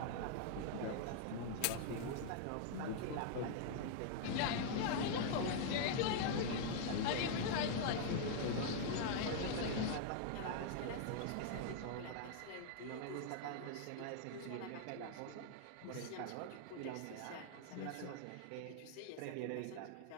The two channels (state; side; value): different; both; correlation -0.01